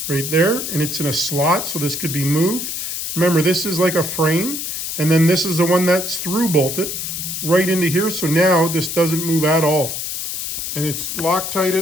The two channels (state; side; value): noise; left; hiss, 4 dB below the sound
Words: right there, and it's in a slot, so this could be moved. Remember, this is like a frame, and then this is the one that's through bolted right into here, so now this doesn't move at all. And it's